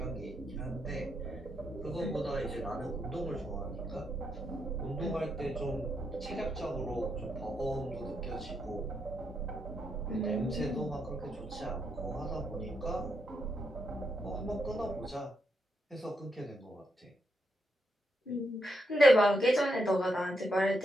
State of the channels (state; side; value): normal; both; correlation 0.80